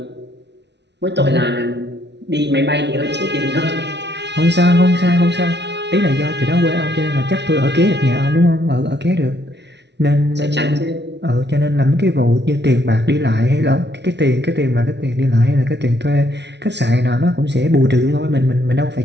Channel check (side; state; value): left; late; 0.50 ms